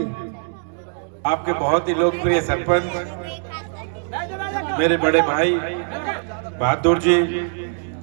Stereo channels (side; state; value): left; silent; digital silence